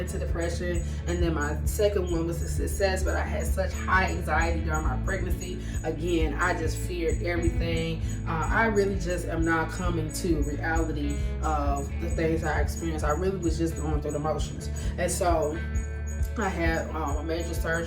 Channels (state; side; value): identical; both; correlation 1.00